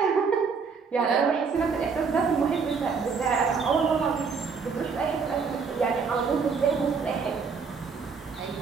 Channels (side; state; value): left; quieter; 5.4 dB